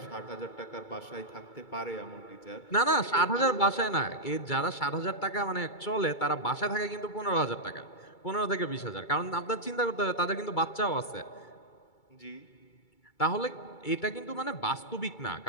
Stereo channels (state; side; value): late; right; 2.3 ms